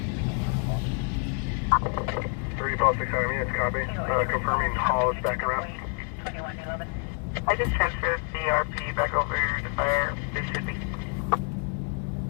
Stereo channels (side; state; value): right; quieter; 38.7 dB